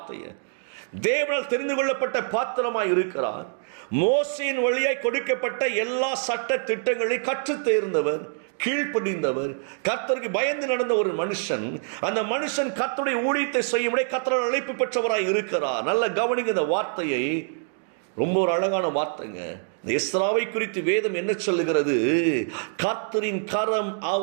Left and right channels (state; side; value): silent; left; 61 dB below the other